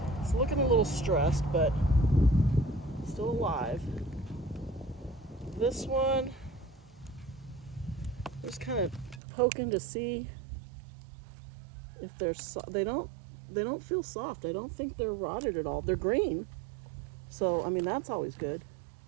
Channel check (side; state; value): left; drops out; at 9.2 s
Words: It's looking a little stressed, but still alive. This one, just kind of poking to see if they're they don't feel soft. I don't think they're rotted at all. They're green, so I mean that's always good.